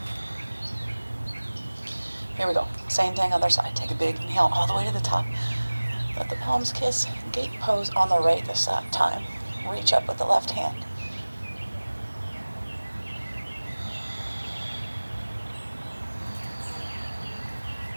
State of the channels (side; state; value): both; inverted; correlation -1.00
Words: Here we go. Same thing, other side. Take a big inhale all the way to the top. Let the palms kiss. Gate pose on the right this time. Reach up with the left hand.